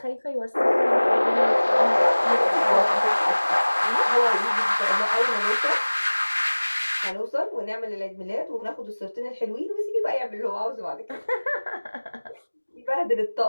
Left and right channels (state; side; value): inverted; both; correlation -1.00